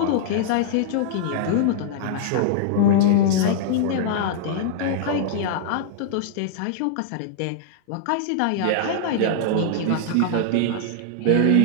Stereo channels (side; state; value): both; different; correlation -0.01